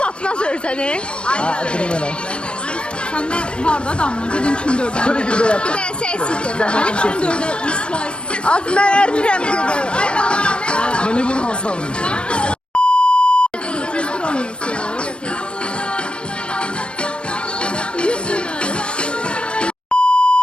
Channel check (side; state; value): right; late; 0.056 ms